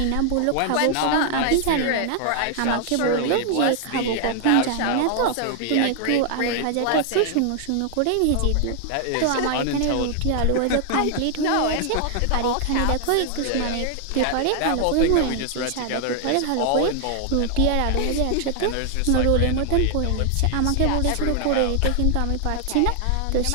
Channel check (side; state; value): both; different; correlation 0.00